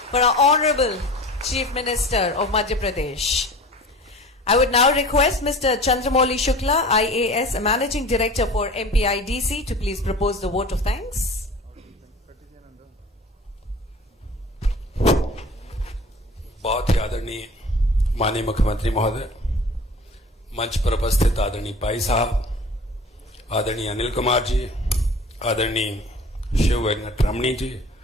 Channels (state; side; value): normal; both; correlation 0.42